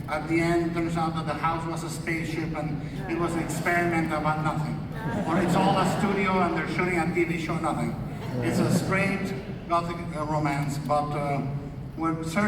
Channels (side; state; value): both; identical; correlation 1.00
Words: at the end it turns out that the house was a spaceship and it was an experiment about nothing. Or it's all a studio and they're shooting a TV show, nothing. It's a straight Gothic romance, but with